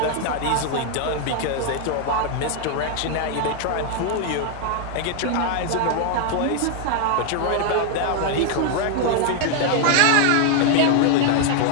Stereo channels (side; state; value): both; different; correlation 0.00